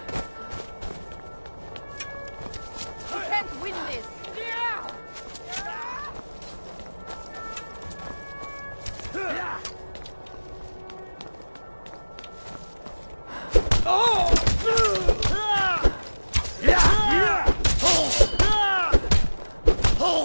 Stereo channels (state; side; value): inverted; both; correlation -1.00